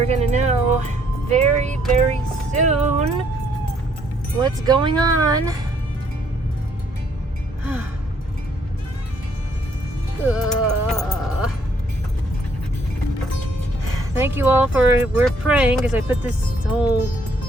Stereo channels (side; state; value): both; normal; correlation 0.67